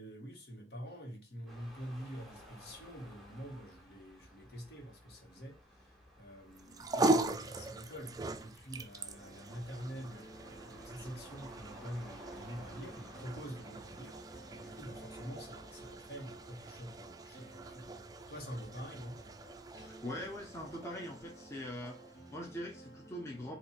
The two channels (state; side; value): normal; both; correlation 0.56